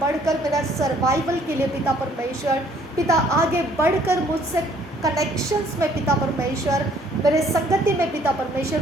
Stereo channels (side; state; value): both; normal; correlation 0.61